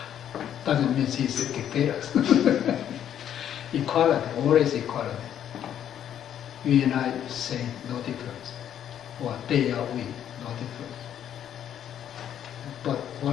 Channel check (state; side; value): quieter; right; 10.0 dB